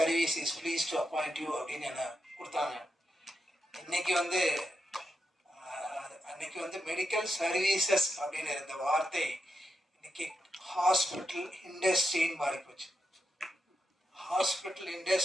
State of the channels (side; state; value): both; normal; correlation 0.86